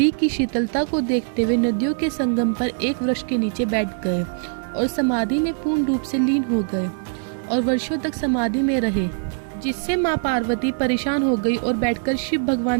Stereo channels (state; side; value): silent; left; 64 dB below the other